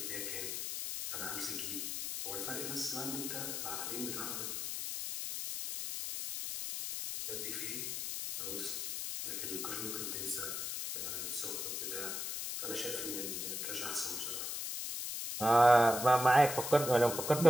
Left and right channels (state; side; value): noise; left; hiss, 3 dB below the sound